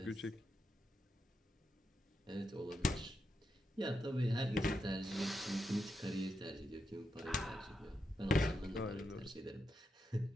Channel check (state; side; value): normal; both; correlation 0.85